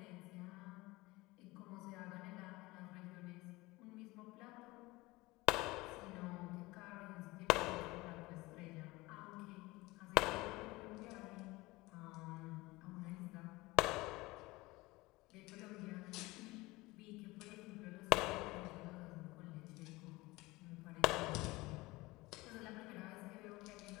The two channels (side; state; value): right; quieter; 21.4 dB